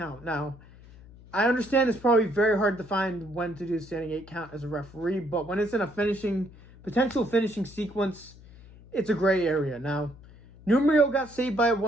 Now, I understand it's probably very hard to find when to do the standing 8 count as a referee, but when it's in a potential finishing sequence, it's a gray area. Now, Numrio got saved by it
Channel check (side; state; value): left; noise; hum, 21 dB below the sound